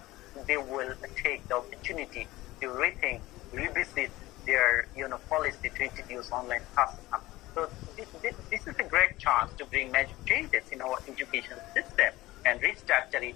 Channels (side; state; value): right; quieter; 18.4 dB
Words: they will take the opportunity to rethink, revisit their policy to introduce online classes. So this is a great chance to bring major changes in our education system and restructure